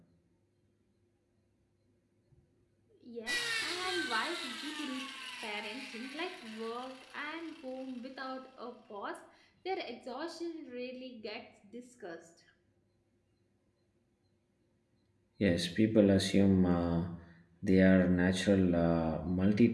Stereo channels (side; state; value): both; identical; correlation 1.00